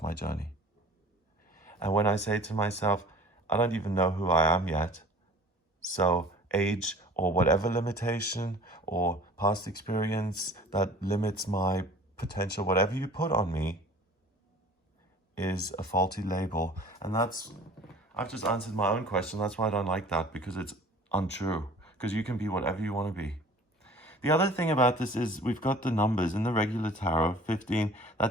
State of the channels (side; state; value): both; normal; correlation 0.47